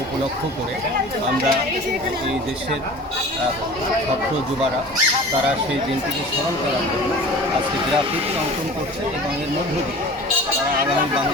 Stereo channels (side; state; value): both; normal; correlation 0.41